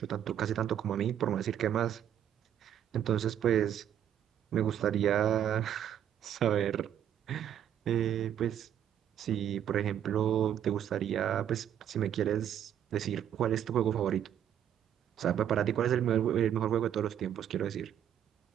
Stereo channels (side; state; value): left; quieter; 9.9 dB